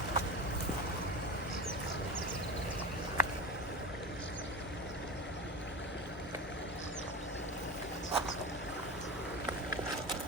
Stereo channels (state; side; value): normal; both; correlation 0.27